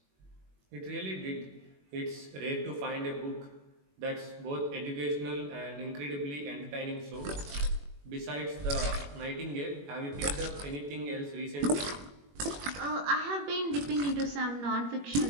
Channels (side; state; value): left; late; 21 ms